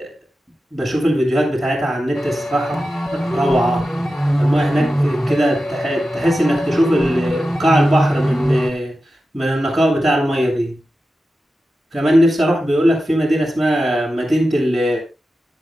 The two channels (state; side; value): normal; both; correlation 0.92